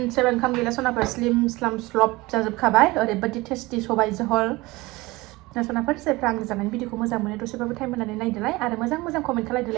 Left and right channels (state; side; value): quieter; left; 21.5 dB